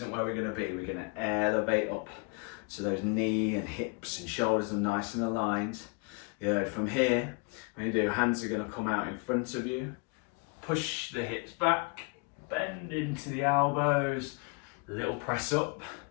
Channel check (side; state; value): right; quieter; 31.5 dB